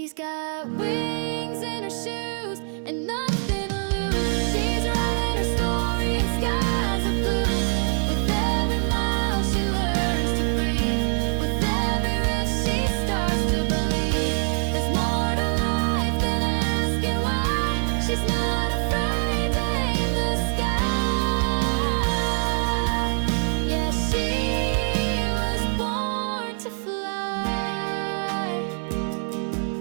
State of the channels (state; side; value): silent; left; 55 dB below the other